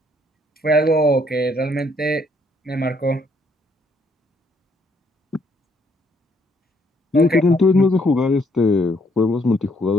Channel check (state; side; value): normal; both; correlation 0.69